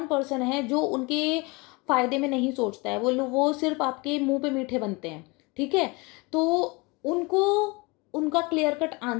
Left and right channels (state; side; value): quieter; right; 26.2 dB